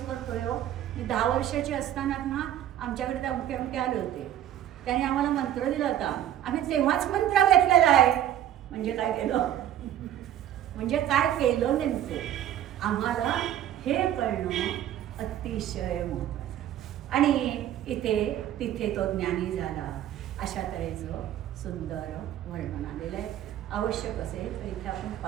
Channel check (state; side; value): quieter; left; 11.5 dB